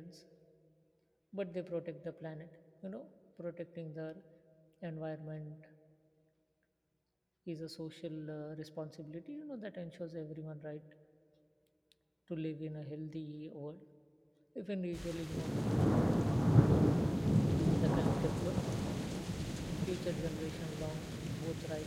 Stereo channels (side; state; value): both; identical; correlation 1.00